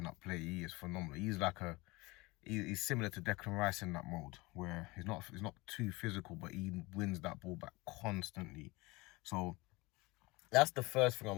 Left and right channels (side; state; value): right; quieter; 23.3 dB